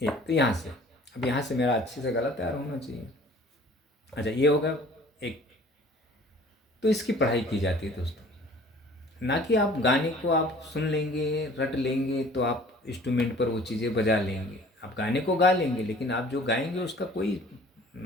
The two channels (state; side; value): normal; both; correlation 0.50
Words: एक तो यहाँ से, अब यहाँ से मेरा अच्छे से गला तैयार होना चाहिए। अच्छा, ये होगा एक। तो इसकी पढ़ाई की जाती है दोस्तों, ना कि आप गाने को आप सुन लेंगे, रट लेंगे, तो आप इंस्ट्रूमेंट पर वो चीज़ें बजा लेंगे। आप गाने को गा लेंगे, लेकिन आप जो गाएंगे उसका कोई